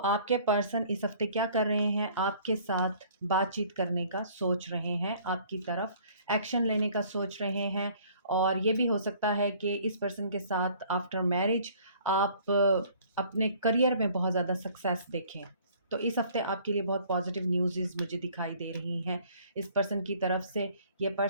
पर्सन इस हफ्ते क्या कर रहे हैं? आपके साथ बातचीत करने का सोच रहे हैं, आपकी तरफ एक्शन लेने का सोच रहे हैं। और ये भी हो सकता है कि इस पर्सन के साथ आफ्टर मैरिज आप अपने करियर में बहुत ज़्यादा सक्सेस देखें। तो इस हफ्ते आपके लिए बहुत पॉजिटिव न्यूज़ मुझे दिखाई दे रही हैं इस पर्सन की तरफ से। ये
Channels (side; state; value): both; inverted; correlation -0.55